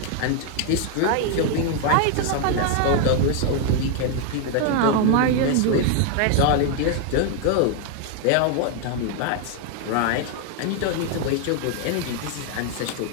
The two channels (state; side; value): different; both; correlation 0.00